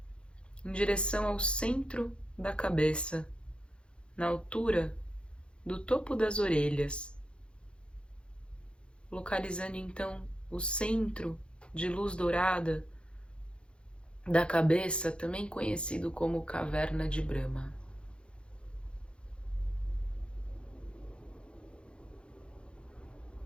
em direção ao centro da cabeça, na altura do topo das orelhas, localizando então o centro de luz dourada da cabeça, também conhecido como caverna de Brahma.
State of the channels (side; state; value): right; late; 0.056 ms